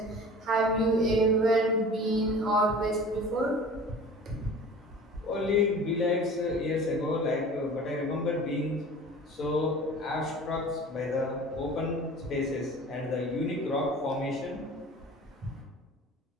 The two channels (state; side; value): normal; both; correlation 0.41